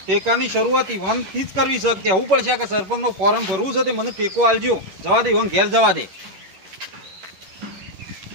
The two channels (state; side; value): late; left; 11 ms